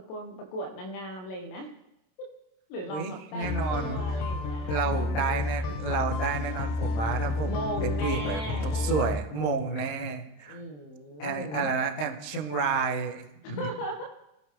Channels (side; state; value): right; late; 26 ms